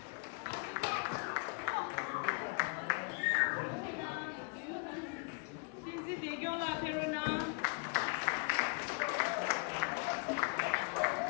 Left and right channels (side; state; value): right; quieter; 35.2 dB